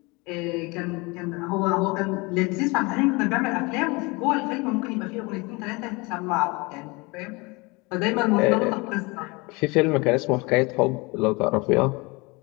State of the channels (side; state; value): right; quieter; 26.3 dB